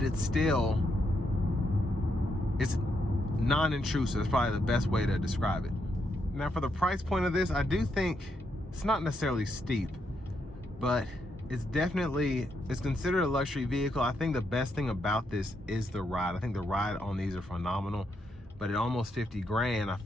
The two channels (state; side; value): normal; both; correlation 0.79